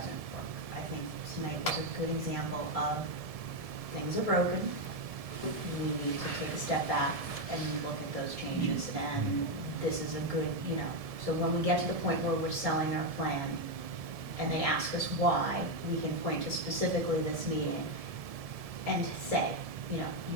work. I think tonight was a good example of things are broken. We need to take a step back and look at those changes, and this is a good, so when we get to the point where we're selling our plan and they ask us why, we can point to specifically this meeting and say,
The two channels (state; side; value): late; left; 1.7 ms